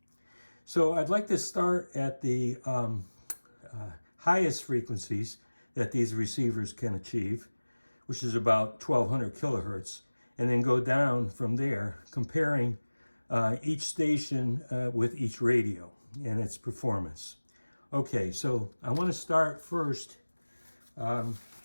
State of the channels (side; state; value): both; inverted; correlation -1.00